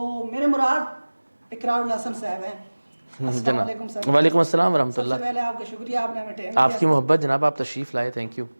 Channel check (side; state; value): both; inverted; correlation -1.00